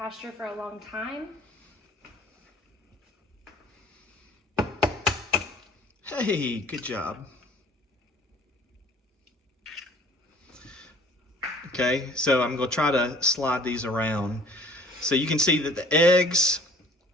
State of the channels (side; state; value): both; normal; correlation 0.52